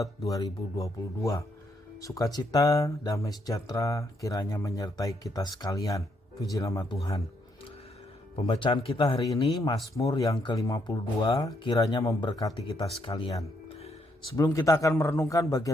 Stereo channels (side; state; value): both; normal; correlation 0.75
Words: 2022. Sukacita, damai sejahtera kiranya menyertai kita sekalian. Puji nama Tuhan. Pembacaan kita hari ini Mazmur yang ke-52 kiranya memberkati kita sekalian. Sebelum kita akan merenungkan